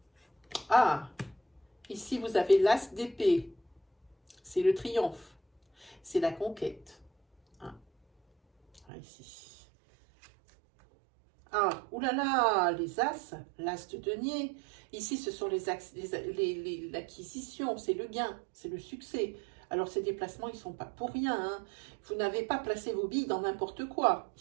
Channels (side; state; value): left; drops out; at 8.8 s